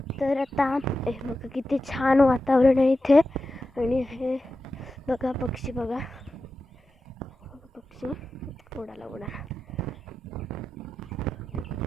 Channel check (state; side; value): normal; both; correlation 0.92